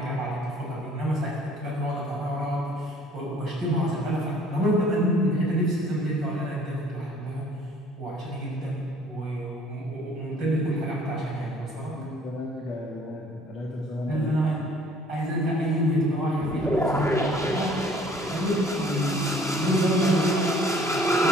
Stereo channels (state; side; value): normal; both; correlation 0.55